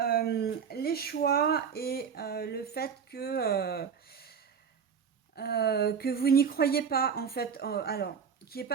les choix et le fait que vous n'y croyez pas, en fait, alors, qu'il n'y ait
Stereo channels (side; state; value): left; quieter; 6.8 dB